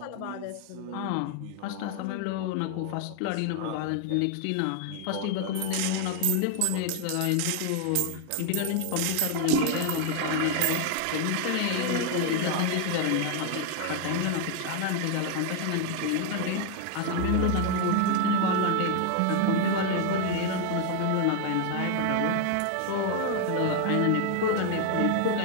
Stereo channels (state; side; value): different; both; correlation 0.00